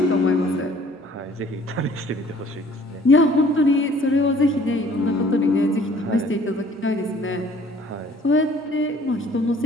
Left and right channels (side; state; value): both; normal; correlation 0.55